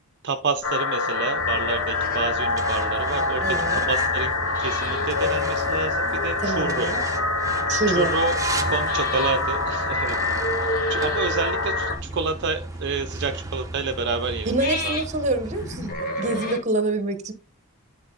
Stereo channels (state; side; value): normal; both; correlation -0.07